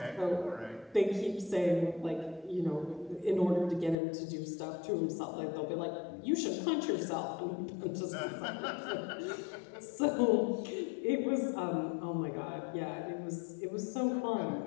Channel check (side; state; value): right; drops out; at 4.0 s